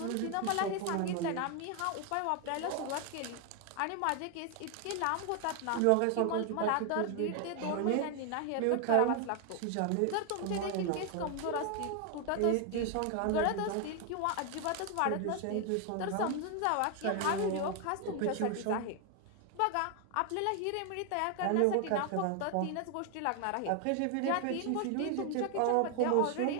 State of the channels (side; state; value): both; different; correlation 0.00